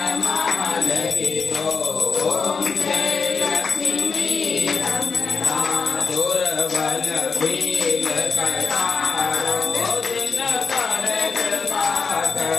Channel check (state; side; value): quieter; right; 5.3 dB